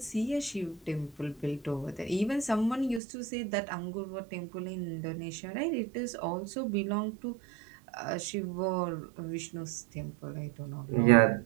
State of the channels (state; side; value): drops out; left; at 3.0 s